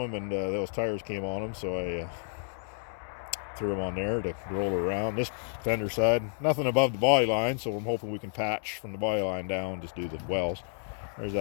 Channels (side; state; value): right; silent; digital silence